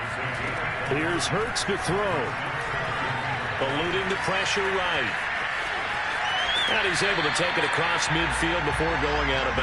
Here's Hurts to throw. Eluding the pressure right. And he's able to take it across midfield before going out of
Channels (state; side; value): identical; both; correlation 1.00